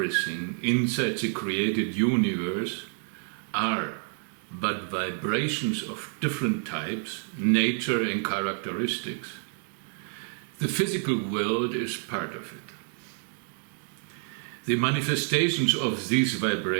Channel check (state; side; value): silent; left; 59 dB below the other